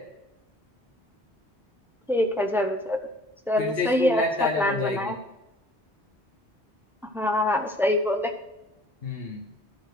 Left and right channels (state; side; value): normal; both; correlation 0.53